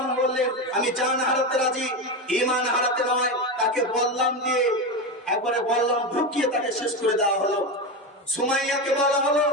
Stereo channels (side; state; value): both; normal; correlation 0.17